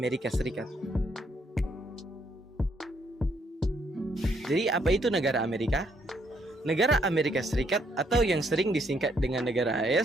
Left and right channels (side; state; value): both; normal; correlation 0.72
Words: Serikat. Jadi apa itu negara Amerika? Negara Amerika Serikat atau yang sering disingkat dengan negara